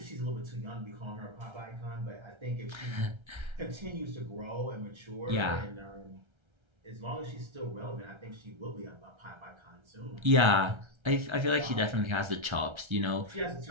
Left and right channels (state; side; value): late; left; 1.3 ms